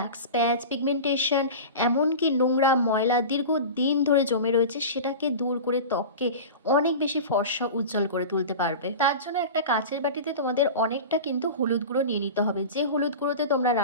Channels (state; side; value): inverted; both; correlation -0.31